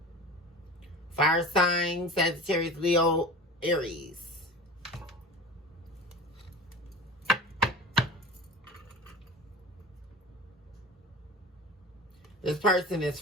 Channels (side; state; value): both; normal; correlation 0.34